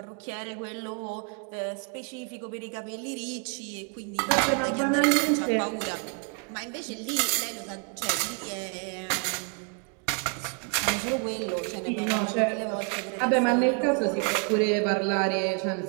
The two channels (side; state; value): left; quieter; 38.8 dB